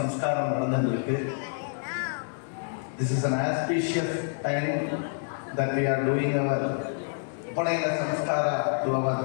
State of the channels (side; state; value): right; silent; digital silence